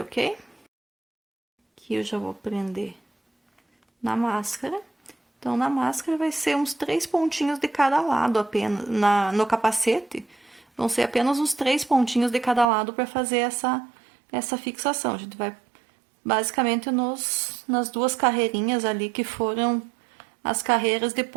ok? Aqui eu já vou prender na máscara. Então, na máscara vai ser uns 3 pontinhos de cada lado apenas. No capacete, vão ser apenas uns 3 pontinhos de cada lado para fazer essa fixação. A gente vai basicamente nas duas carreirinhas ali que foram as carreiras de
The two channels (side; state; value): left; drops out; at 12.7 s